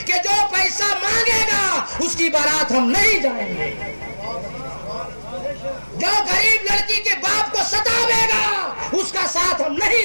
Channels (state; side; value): inverted; both; correlation -1.00